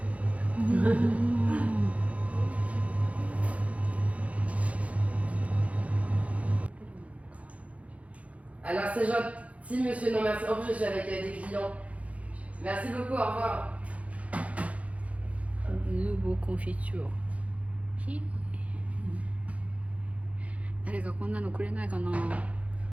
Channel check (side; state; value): left; late; 0.066 ms